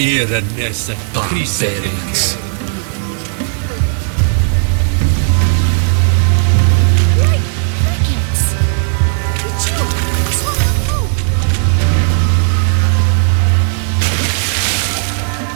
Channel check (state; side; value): silent; left; digital silence